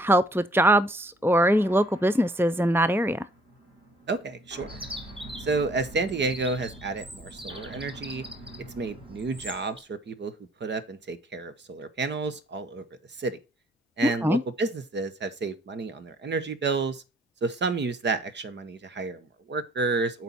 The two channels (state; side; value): normal; both; correlation 0.60